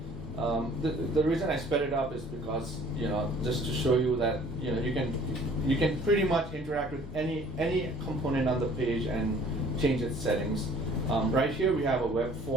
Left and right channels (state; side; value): normal; both; correlation 0.53